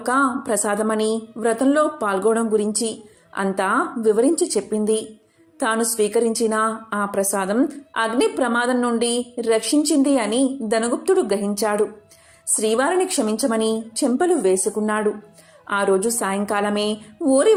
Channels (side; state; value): both; identical; correlation 1.00